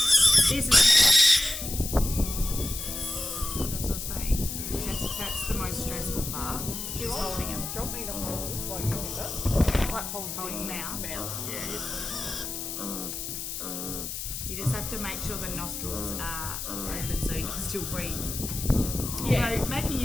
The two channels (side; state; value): left; noise; hiss, 6 dB below the sound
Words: This is to make sure the nostrils are open so you can still breathe. Yeah. Although making